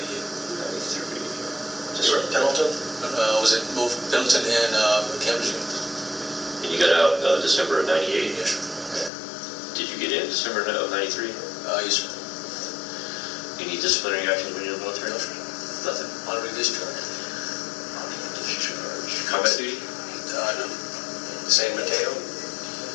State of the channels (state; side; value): drops out; right; at 9.1 s